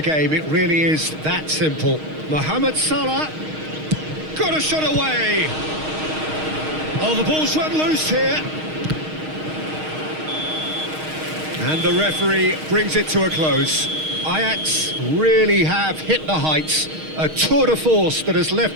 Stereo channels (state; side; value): late; left; 6.4 ms